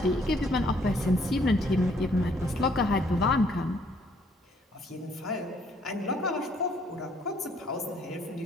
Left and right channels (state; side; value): normal; both; correlation 0.65